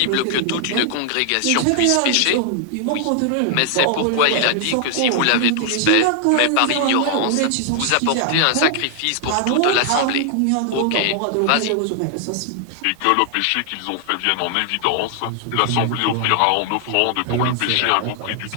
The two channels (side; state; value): both; different; correlation 0.00